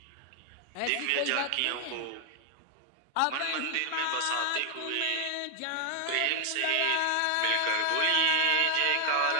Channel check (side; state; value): both; different; correlation 0.00